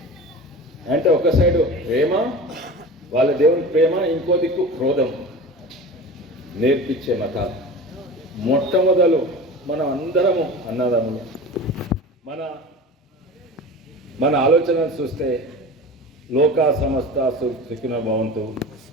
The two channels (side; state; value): both; normal; correlation 0.34